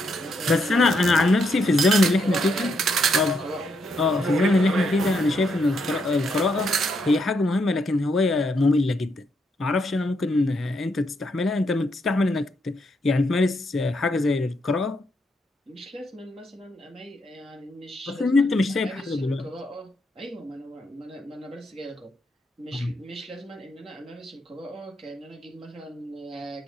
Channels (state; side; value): normal; both; correlation 0.78